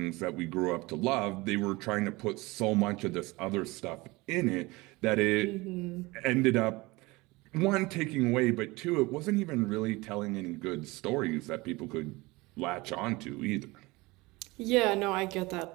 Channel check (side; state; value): left; quieter; 22.7 dB